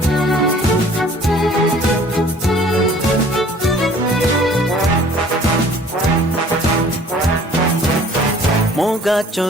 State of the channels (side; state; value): both; normal; correlation 0.52